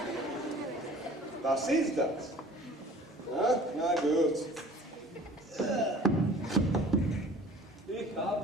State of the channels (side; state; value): both; normal; correlation 0.47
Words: Was ist das? Na gut. Ich habe